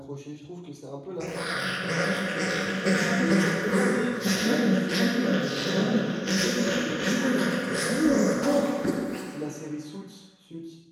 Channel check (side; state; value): both; identical; correlation 1.00